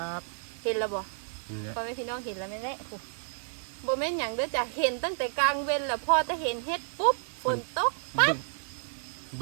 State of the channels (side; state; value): left; silent; digital silence